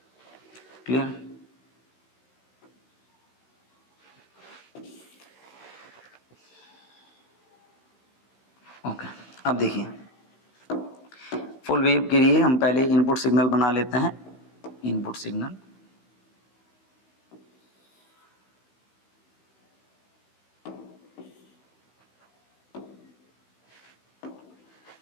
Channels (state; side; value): late; right; 15 ms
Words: क्लियर, ओके। अब देखिए फुल वेव के लिए हम पहले इनपुट सिग्नल बना लेते हैं, इनपुट सिग्नल,